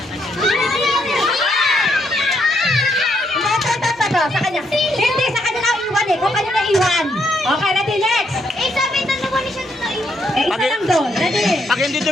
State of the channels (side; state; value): both; normal; correlation 0.75